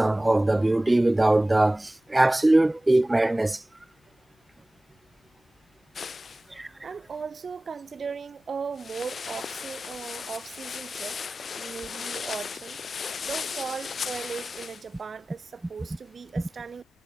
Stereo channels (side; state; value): both; normal; correlation 0.98